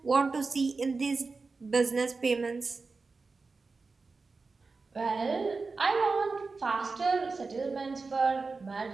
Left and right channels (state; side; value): quieter; left; 4.2 dB